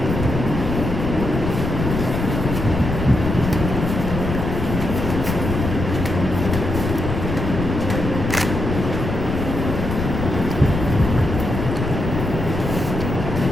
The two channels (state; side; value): noise; left; rumble, 3 dB below the sound